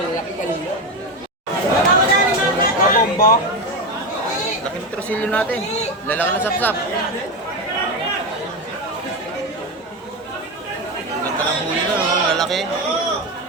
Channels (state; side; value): normal; both; correlation 0.16